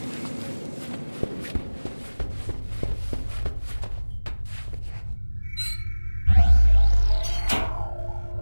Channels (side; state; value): both; inverted; correlation -1.00